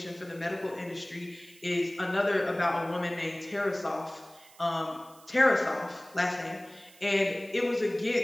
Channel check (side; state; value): right; noise; hiss, 24 dB below the sound